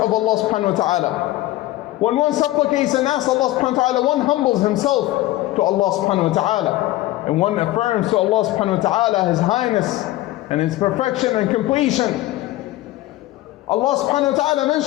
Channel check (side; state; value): right; quieter; 16.7 dB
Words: Allah subhanahu wa ta'ala. When one supplicates and asks Allah subhanahu wa ta'ala, one humbles himself to Allah subhanahu wa ta'ala. And one affirms to Allah subhanahu wa ta'ala His highness and His perfection and completion. Allah subhanahu wa ta'ala